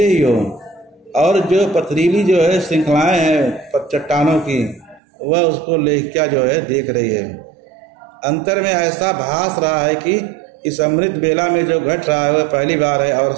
ही हो। और जो पथरीली जो है श्रृंखलाएं हैं चट्टानों की, वह उसको लेखिका जो है देख रही है। अंतर में ऐसा भास रहा है कि इस अमृत बेला में जो घट रहा है वह पहली बार है और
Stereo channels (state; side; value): drops out; left; at 5.0 s